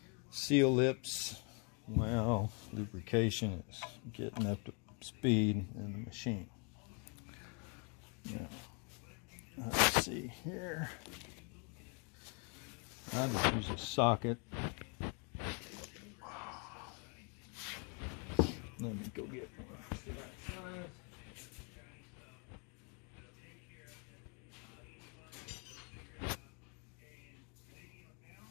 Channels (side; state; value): right; quieter; 36.3 dB